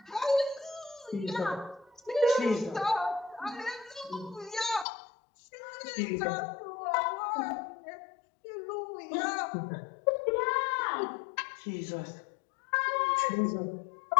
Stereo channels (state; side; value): drops out; right; at 4.9 s